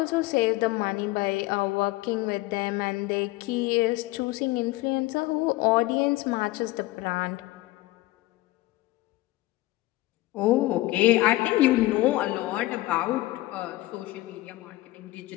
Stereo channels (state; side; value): quieter; right; 18.4 dB